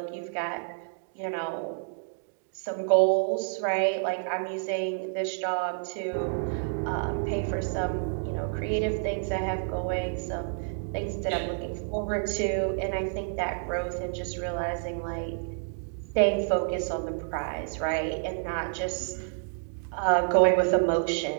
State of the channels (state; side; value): silent; left; digital silence